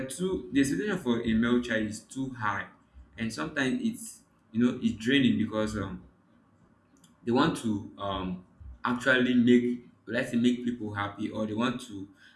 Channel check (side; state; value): both; identical; correlation 1.00